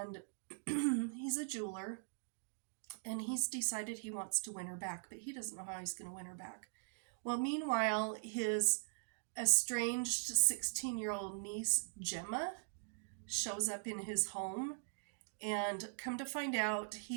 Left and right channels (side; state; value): left; silent; digital silence